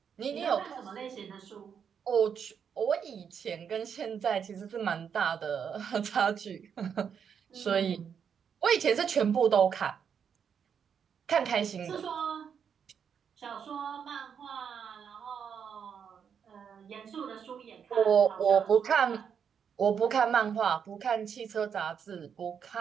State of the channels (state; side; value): quieter; left; 7.4 dB